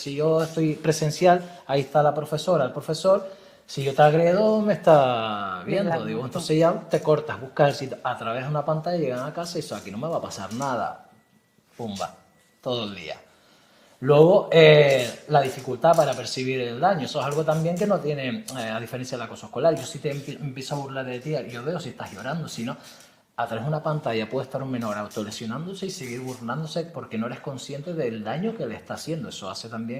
yo estoy presencial, ahí está la profesora, el profesor. Si yo te agredo, me está viendo. Digo, entonces ya te cortas, buscas el sitio. A través de una pantalla llegan a casa y eso, aquí no me va a pasar nada. Pumba, todo el día. Luego, la dificultad para percibir el daño. Eso es algo también que no tiene, a diferencia del acoso escolar. Yo si te empiezo a burlar de ti, yo veo si estás llorando, si no, a través de una pantalla puede estar un menor autolesionándose y seguir burlándose porque no eres consciente del daño que le está haciendo. Eso hace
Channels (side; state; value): both; identical; correlation 1.00